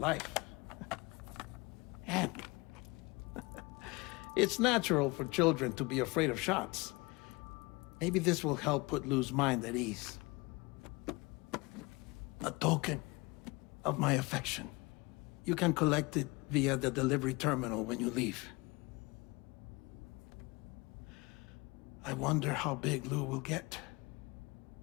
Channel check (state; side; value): quieter; right; 25.4 dB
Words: And it's natural for children to be afraid of shots. Maybe this will help put Lou's mind at ease. A token of my affection. You can collect it via the delivery terminal when you leave. I wonder how big Lou will get.